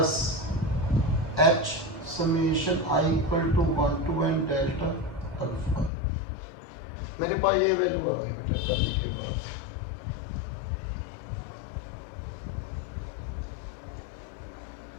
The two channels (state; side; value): drops out; right; at 5.9 s